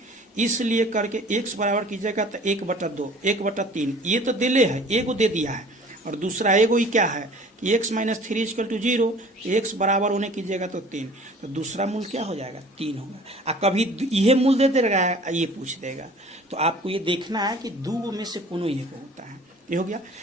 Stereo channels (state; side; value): normal; both; correlation 0.48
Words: इसलिए करके x बराबर कीजिएगा तो 1/2 1/3 ये तो दिले है, एगो दे दिया है, और दूसरा एगो ही क्या है कि x minus 3 equal to 0, x बराबर होने कीजिएगा तो 3, तो दूसरा मूल क्या हो जाएगा 3 होगा। कभी ये मूल दे देगा, ये पूछ देगा, तो आपको ये देखना है कि दो में से कोनो एक होता है। ये हो गया।